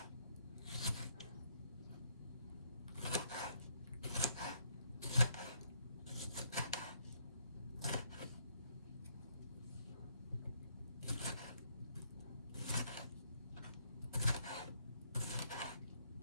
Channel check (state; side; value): inverted; both; correlation -0.70